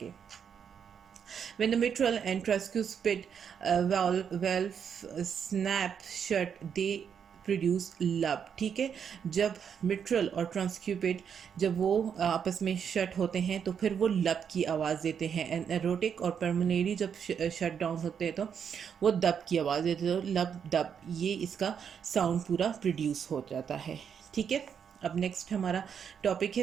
When the mitral and tricuspid valve snap shut, they produce लब। ठीक है, जब मिट्रल और ट्रांसक्यूपिड जब वो आपस में शट होते हैं तो फिर वो लब की आवाज़ देते हैं। एंड एरोटिक और पर्मनेरी जब शट डाउन होते हैं तो वो दब की आवाज़ देते हैं। तो लब दब, ये इसका साउंड पूरा प्रोड्यूस हो जाता है। ठीक है, अब नेक्स्ट हमारा टॉपिक है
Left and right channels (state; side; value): quieter; left; 7.5 dB